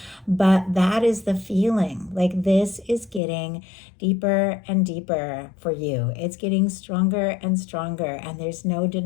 But that is the feeling. Like this is getting deeper and deeper for you. It's getting stronger and stronger, and there's no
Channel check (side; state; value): right; drops out; at 3.2 s